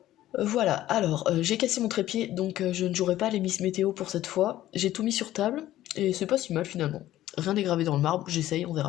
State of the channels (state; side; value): quieter; right; 14.0 dB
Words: Voilà, alors j'ai cassé mon trépied donc je ne jouerai pas les Miss Météo pour cette fois. J'ai tout mis sur table et c'est pas si mal finalement. Rien n'est gravé dans le marbre, j'essaye, on